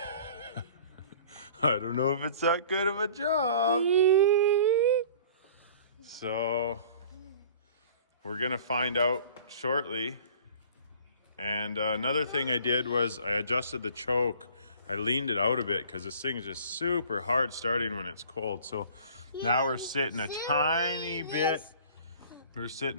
I don't know if it's that good of a job. So we're gonna find out shortly. And another thing I did was I adjusted the choke. I leaned it out a bit because this thing is just super hard starting when it's cold. So now we're sitting a tiny bit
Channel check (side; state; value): both; inverted; correlation -0.48